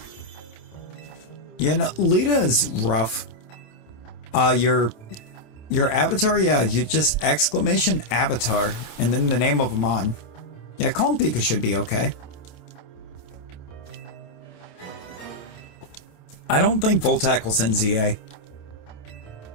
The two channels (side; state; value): right; late; 27 ms